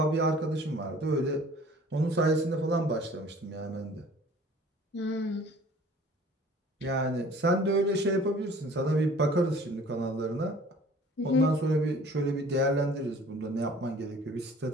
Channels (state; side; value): normal; both; correlation 0.50